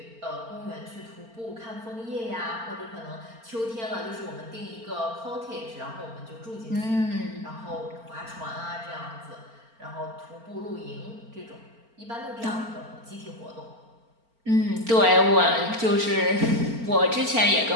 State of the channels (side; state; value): left; late; 4.4 ms